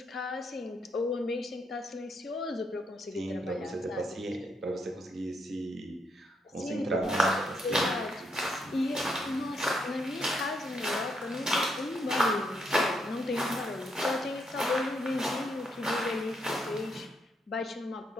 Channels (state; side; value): normal; both; correlation 0.77